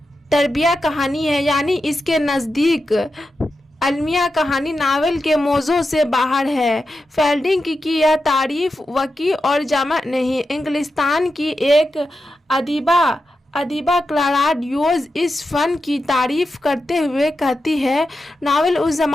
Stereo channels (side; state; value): both; normal; correlation 0.89